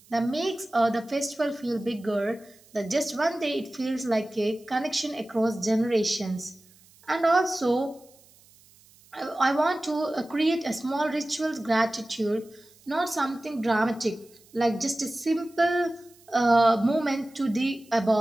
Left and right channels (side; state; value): right; noise; hiss, 28 dB below the sound